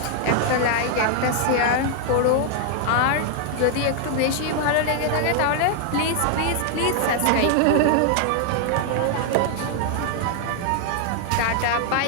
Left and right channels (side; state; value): both; different; correlation 0.00